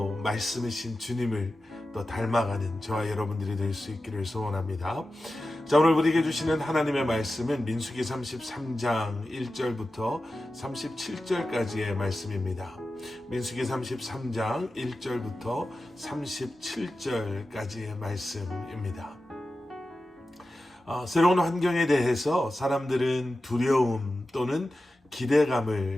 말씀이신 주님을 또 닮아가는 저와 여러분들이 될 수 있기를 소원합니다. 자, 오늘 우리에게 주시는 하나님의 말씀은 민수기 33장 1절부터 37절까지의 말씀입니다. 민수기 33장 1절부터 37절까지의 말씀입니다. 새로운 환경에 대해서 사람들은 두려움 또는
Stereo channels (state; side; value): normal; both; correlation 0.93